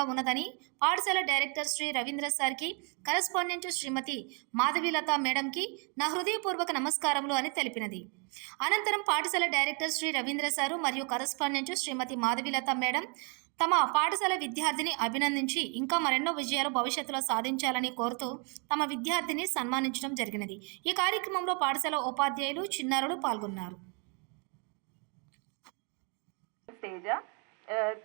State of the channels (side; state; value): left; quieter; 35.6 dB